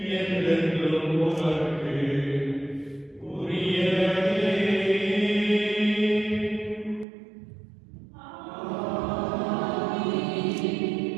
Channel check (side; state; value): left; drops out; at 7.1 s